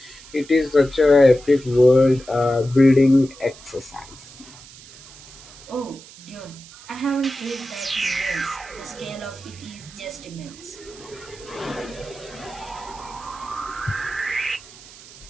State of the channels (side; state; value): right; noise; hiss, 19 dB below the sound